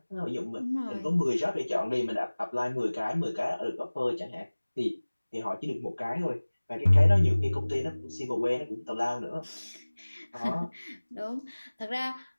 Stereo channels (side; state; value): both; inverted; correlation -1.00